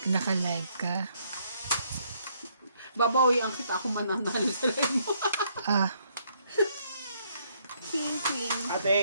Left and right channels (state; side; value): inverted; both; correlation -0.70